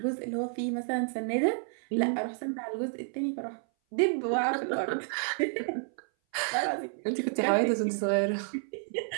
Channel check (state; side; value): silent; left; 57 dB below the other